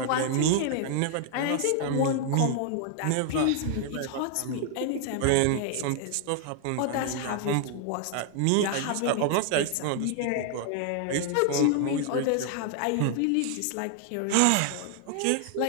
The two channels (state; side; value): different; both; correlation 0.00